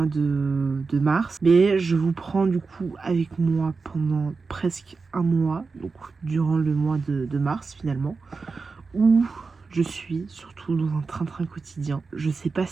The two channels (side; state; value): left; quieter; 4.4 dB